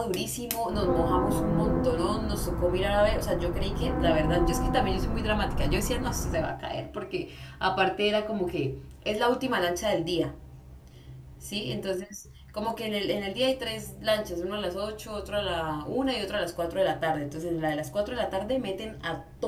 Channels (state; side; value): identical; both; correlation 1.00